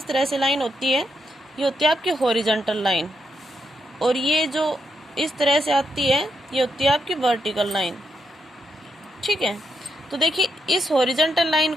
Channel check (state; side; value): normal; both; correlation 0.81